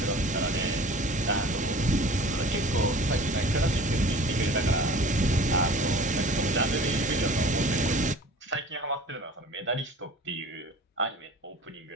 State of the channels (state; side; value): normal; both; correlation 0.43